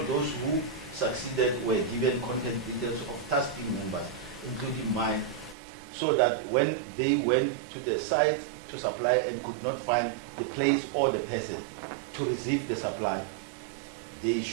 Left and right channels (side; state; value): left; drops out; at 5.6 s